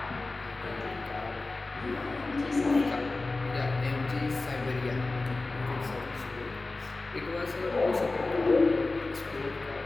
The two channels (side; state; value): right; quieter; 3.3 dB